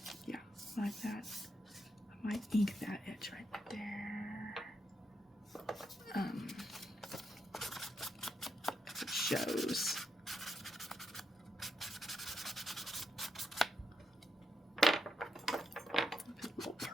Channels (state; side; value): normal; both; correlation 0.82